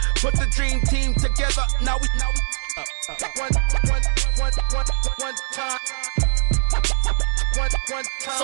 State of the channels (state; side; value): silent; left; 65 dB below the other